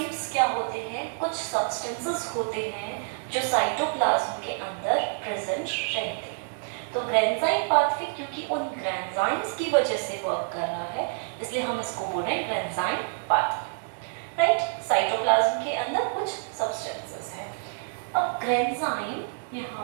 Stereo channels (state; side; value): silent; left; digital silence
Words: क्या होते हैं, कुछ सब्सटेंसेस होते हैं जो साइटोप्लाज्म के अंदर प्रेजेंट रहते हैं। तो ग्रेन्जाइम पाथवे क्योंकि उन ग्रेन्जाइम्स की वजह से वर्क कर रहा है, इसलिए हम इसको बोल रहे हैं ग्रेन्जाइम पाथवे, राइट। साइटोप्लाज्म के अंदर कुछ सब्सटेंसेस हैं। अब ग्रेन्जाइम